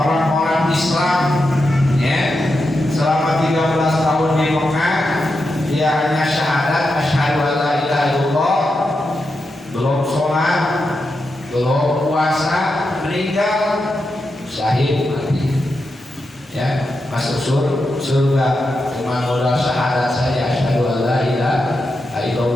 Islam, ya, selama 13 tahun di Mekah, dia hanya syahadat asyhadu an la ilaha illallah, belum sholat, belum puasa, meninggal syahid mati, ya, masuk surga cuma modal syahadat saja asyhadu an la ilaha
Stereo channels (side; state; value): both; normal; correlation 0.87